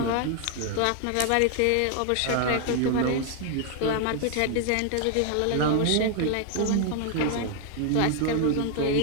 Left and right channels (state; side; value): different; both; correlation 0.00